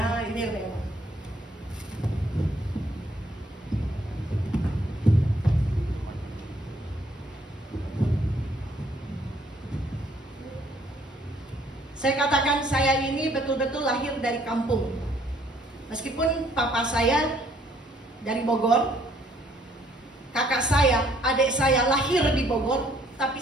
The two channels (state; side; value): normal; both; correlation 0.65